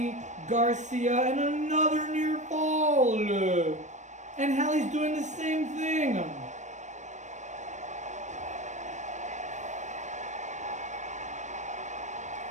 Garcia and another near fall. And Hallie's doing the same thing.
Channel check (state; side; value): late; left; 0.35 ms